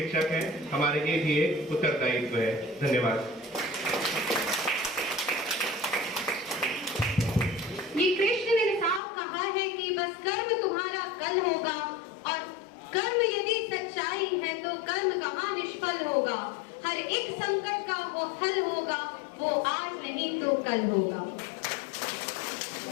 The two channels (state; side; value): drops out; right; at 9.0 s